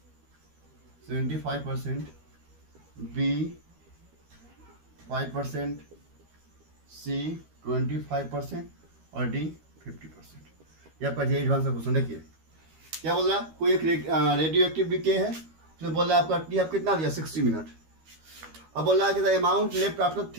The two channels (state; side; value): late; left; 13 ms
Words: 75%, B 5%, C 25% और D 50%। ये आपका जे एडवांस का क्वेश्चन। देखिए क्या बोल रहा है, कोई एक रेडियो एक्टिव डीके है, उसमें बोल रहा है आपका टी आप कितना दिया 60 मिनट। अब बोल रहा है कि the amount left after